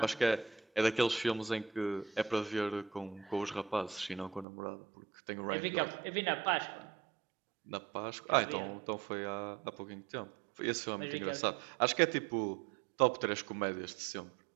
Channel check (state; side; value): drops out; left; at 4.5 s